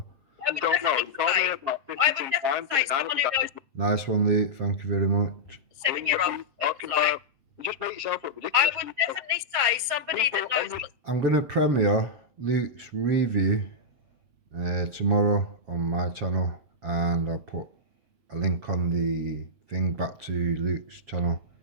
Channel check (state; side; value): late; left; 7.4 ms